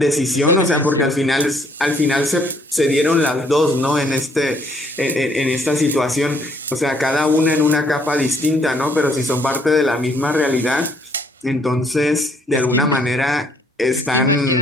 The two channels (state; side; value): normal; both; correlation 0.66